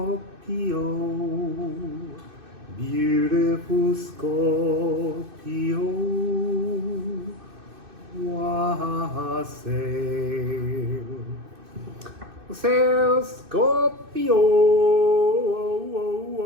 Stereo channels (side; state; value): left; late; 2.6 ms